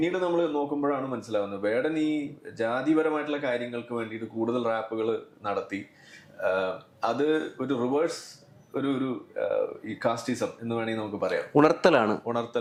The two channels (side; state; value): both; identical; correlation 1.00